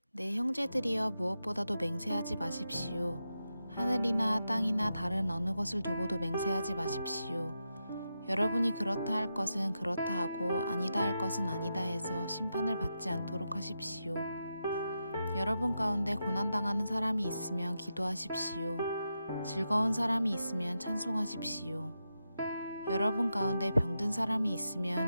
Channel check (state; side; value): inverted; both; correlation -0.87